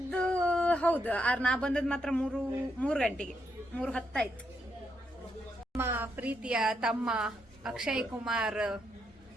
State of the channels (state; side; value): normal; both; correlation 0.79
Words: ಹೌದು, ನಾ ಬಂದದ್ ಮಾತ್ರ 3 ಗಂಟೆಗೆ, 3:10 ಆಯ್ತು. ನಮ್ಮ ಪ್ರೀತಿಯ ತಮ್ಮ ಅಕ್ಷಯ್ ಕುಮಾರ್